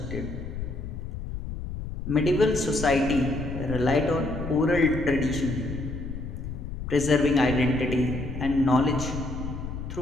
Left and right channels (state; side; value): noise; left; rumble, 7 dB below the sound